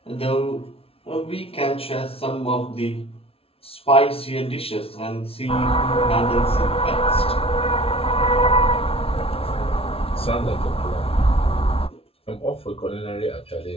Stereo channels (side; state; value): right; late; 0.27 ms